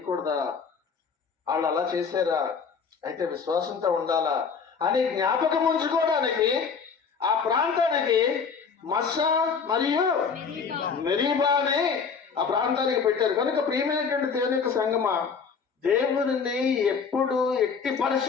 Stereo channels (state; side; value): quieter; right; 5.8 dB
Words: వాళ్ళు అలా చేశారా, అయితే విశ్వాసంతో ఉండాలా అని జ్ఞాపకం ఉంచుకోవడానికి ఆ ప్రాంతానికి మస్సా మరియు మెరీబా అని ఆ ప్రాంతానికి పెట్టారు. కనుక ప్రియమైనటువంటి దేవుని యొక్క సంగమా, దేవుడిని ఎప్పుడు ఎట్టి